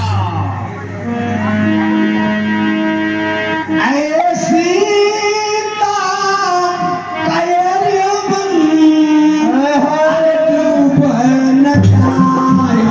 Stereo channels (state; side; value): identical; both; correlation 1.00